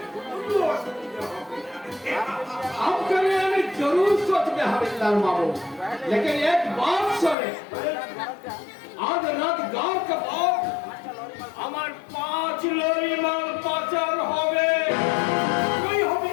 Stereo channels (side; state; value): right; drops out; at 7.4 s